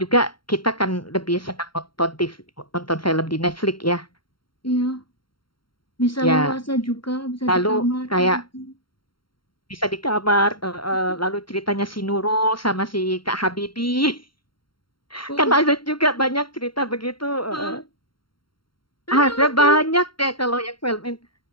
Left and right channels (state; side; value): late; right; 0.73 ms